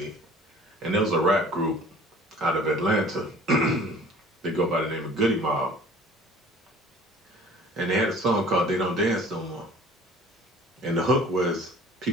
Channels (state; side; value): normal; both; correlation 0.48